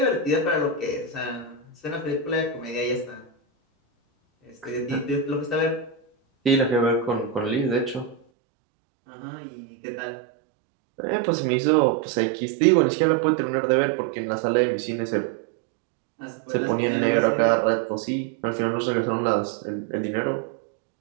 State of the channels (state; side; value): drops out; left; at 8.2 s